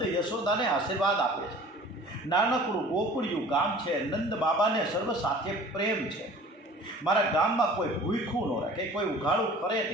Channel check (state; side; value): normal; both; correlation 0.46